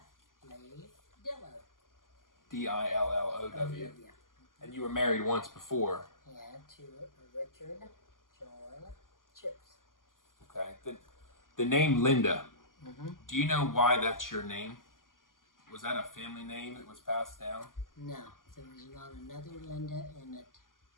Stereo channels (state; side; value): late; right; 0.90 ms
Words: Lee Dillow. D-I-L-L-O-W. Yeah. And you were married once before. Yeah, to Richard John Chips. Okay. The name Linda. Mm-hmm. Do you know why that's your name? Was that a family name that was passed down? No, there was not another Linda in it.